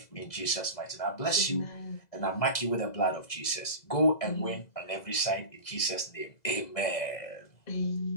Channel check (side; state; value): right; late; 2.0 ms